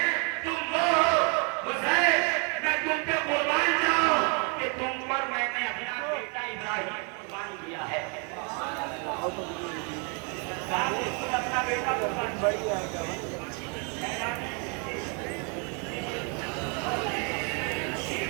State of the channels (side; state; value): left; quieter; 35.7 dB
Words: تم وہ ہو حسین میں تم پہ قربان جاؤں کہ تم پر میں نے اپنا بیٹا ابراہیم قربان کیا ہے. اپنا بیٹا قربان